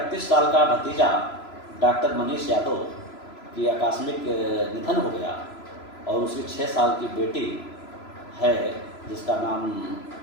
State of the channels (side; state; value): right; late; 3.0 ms